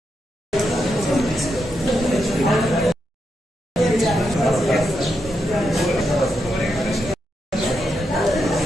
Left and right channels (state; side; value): normal; both; correlation 0.84